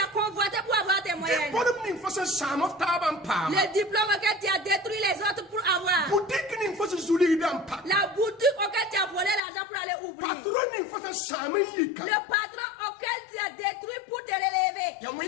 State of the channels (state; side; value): drops out; right; at 9.4 s